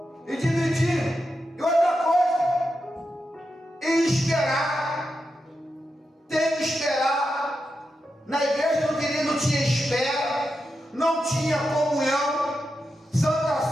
e dividir. E outra coisa, e esperar. Tem que esperar. Na igreja do querido não tinha espera, não tinha comunhão. Santa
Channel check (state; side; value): normal; both; correlation 0.88